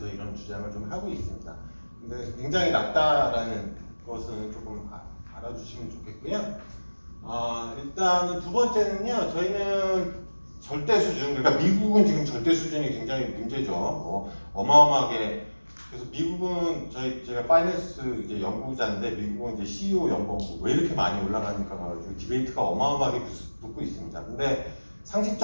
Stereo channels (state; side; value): inverted; both; correlation -1.00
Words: 이런 주장을 좀 하고 있습니다. 근데 굉장히 낮다라는 것은 조금 알아주시면 좋겠고요. 일단은 두 번째는요, 저희는 절대 수준, 그러니까 미국은 지금 절대 수준이 굉장히 문제죠. 어마어마하게. 그래서 미국은 제가 파이낸스 이제 연구자인데 미국은 이제 CEO 연봉 왜 이렇게 많이 올라가니까 가지고 디베이트가 어마어마하게 붙고 있습니다. 근데